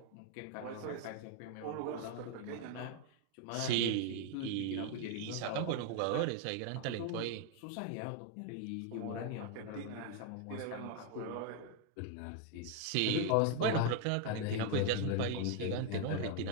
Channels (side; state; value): both; different; correlation 0.00